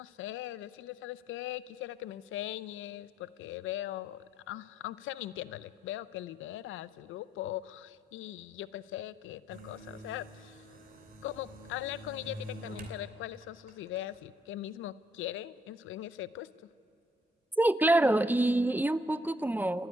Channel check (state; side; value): normal; both; correlation 0.69